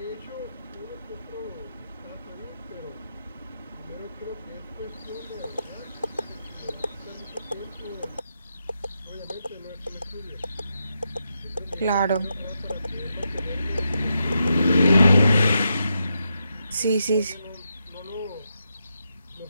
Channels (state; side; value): inverted; both; correlation -0.85